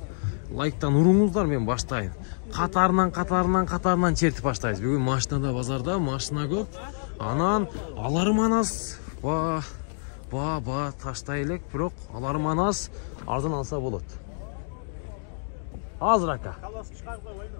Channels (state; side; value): silent; right; 60 dB below the other